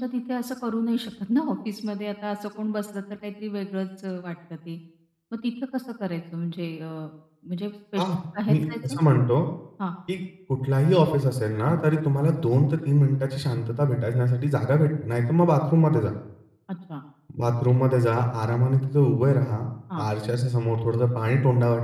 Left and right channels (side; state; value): both; identical; correlation 1.00